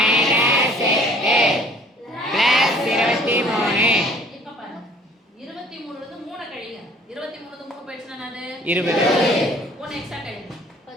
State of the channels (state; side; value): normal; both; correlation 0.53